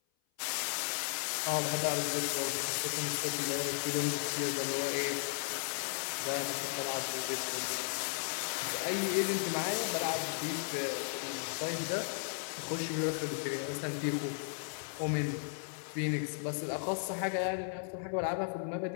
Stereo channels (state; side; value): silent; right; 54 dB below the other